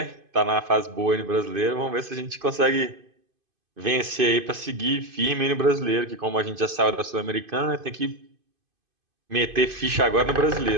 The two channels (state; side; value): late; left; 2.5 ms